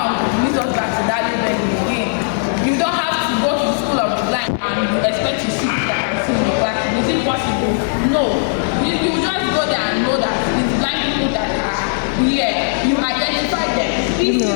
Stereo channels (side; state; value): right; silent; 68 dB below the other